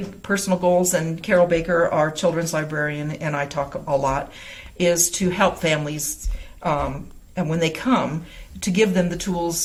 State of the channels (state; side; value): identical; both; correlation 1.00